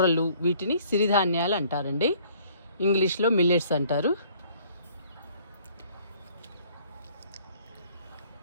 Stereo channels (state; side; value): inverted; both; correlation -0.59